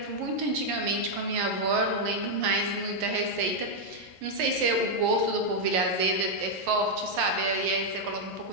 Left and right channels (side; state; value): left; late; 11 ms